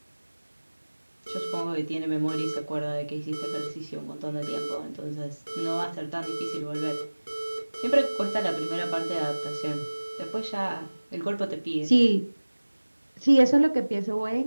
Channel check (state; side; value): inverted; both; correlation -1.00